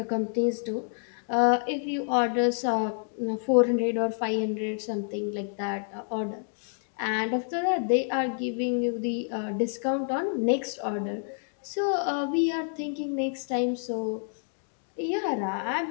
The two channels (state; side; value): silent; right; digital silence